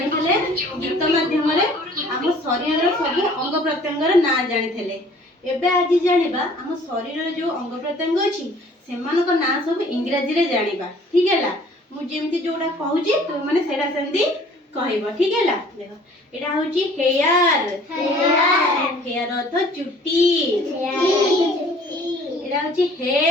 गीत माध्यम रे हम शरीर सब अंग प्रत्यंगर ना जानिथले। एबे आज जानिबा हम शरीर रे जो अंग प्रत्यंग अछि सेमानक ना सब इंग्रजी रे जानिबा। ठीक हैला मु जेमति जोडा कहूची तो माने सेडा सेंदी कहइबो। ठीक हैला देखो एडा होची हेयर हेयर अर्थ चुट्टी एडा होची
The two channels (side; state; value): both; normal; correlation 0.53